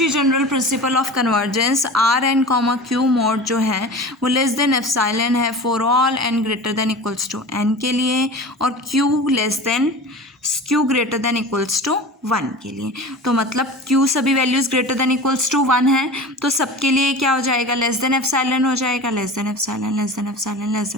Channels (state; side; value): normal; both; correlation 0.35